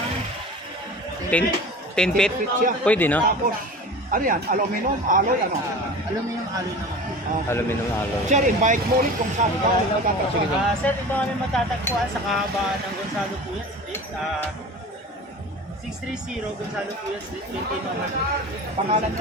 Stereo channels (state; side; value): normal; both; correlation 0.36